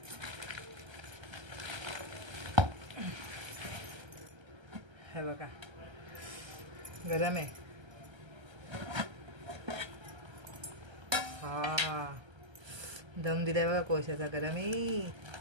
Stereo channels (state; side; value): late; left; 1.3 ms